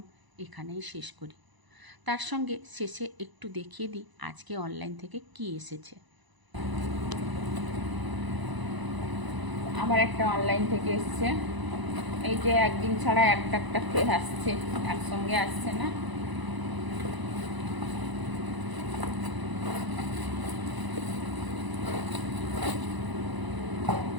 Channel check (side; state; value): left; late; 1.0 ms